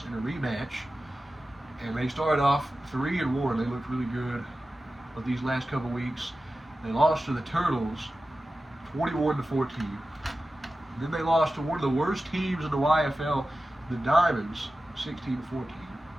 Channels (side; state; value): both; normal; correlation 0.94